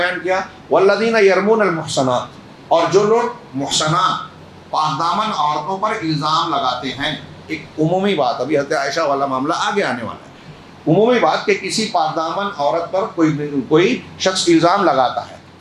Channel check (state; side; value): identical; both; correlation 1.00